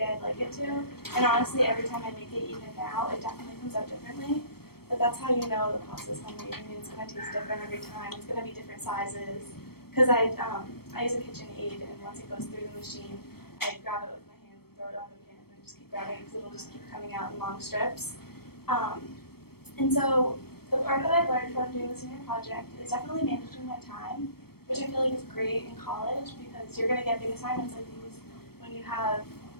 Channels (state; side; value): late; right; 0.95 ms